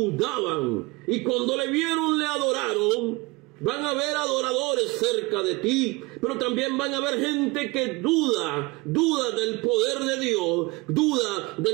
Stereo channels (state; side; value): quieter; left; 24.8 dB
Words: y cuando le vieron le adoraron. Van a haber adoradores cerca de ti, pero también van a haber gente que duda del poder de Dios, duda